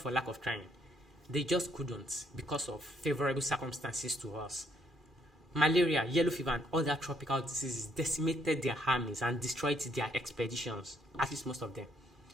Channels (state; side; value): normal; both; correlation 0.70